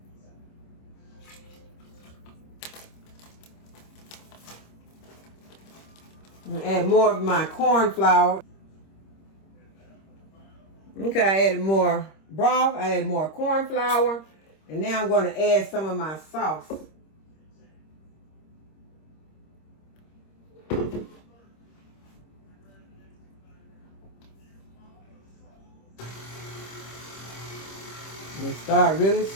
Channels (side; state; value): right; late; 26 ms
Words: I'm gonna add more of my corn flour. Okay, I added more broth, I added more corn flour, and now I'm going to add some of my sauce. And start really